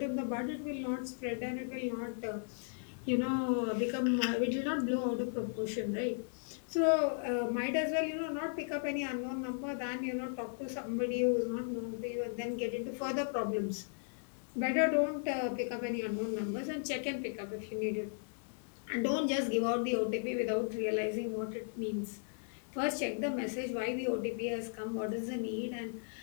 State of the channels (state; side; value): silent; right; 54 dB below the other